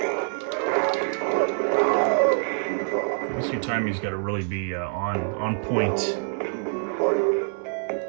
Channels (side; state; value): left; silent; 61 dB below the other